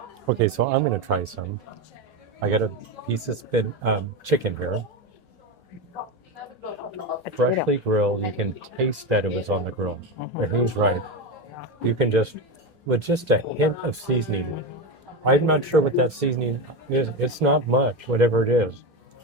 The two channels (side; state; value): both; normal; correlation 0.17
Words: Okay, so I'm going to try some. I got a piece of chicken here. Freshly grilled. You can taste that it was on the grill. And he's right. You can with just a hint of seasoning. I'm not sure what that seasoning is. It's not much, whatever it is.